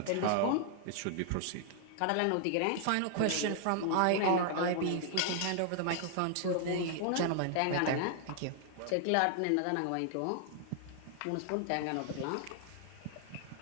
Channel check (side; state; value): both; different; correlation 0.00